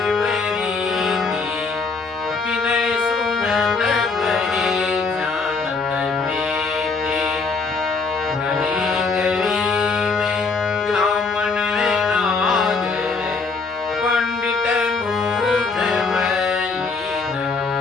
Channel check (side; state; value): right; quieter; 4.4 dB